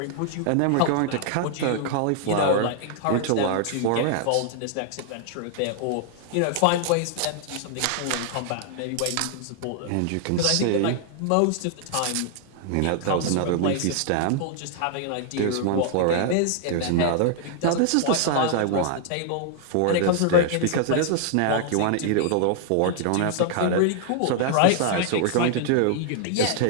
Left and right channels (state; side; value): different; both; correlation -0.01